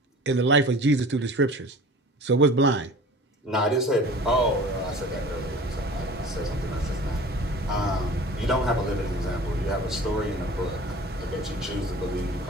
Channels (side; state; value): both; normal; correlation 0.42